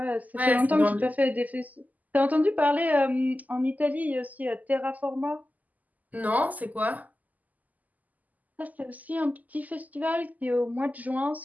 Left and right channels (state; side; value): late; left; 0.079 ms